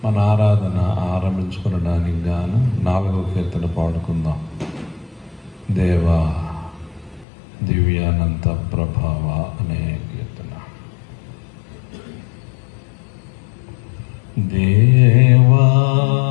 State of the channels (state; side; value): drops out; right; at 7.2 s